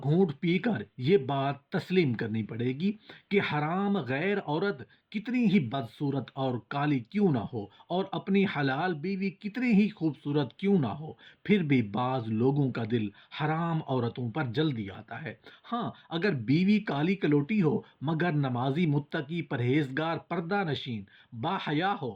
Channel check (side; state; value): both; identical; correlation 1.00